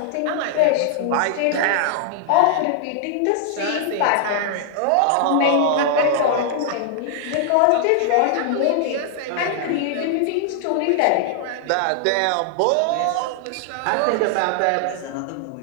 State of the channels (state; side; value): different; both; correlation -0.01